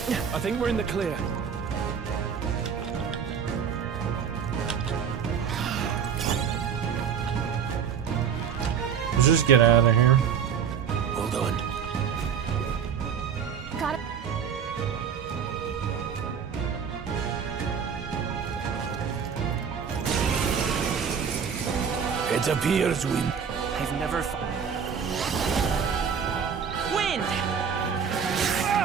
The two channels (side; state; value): left; quieter; 7.3 dB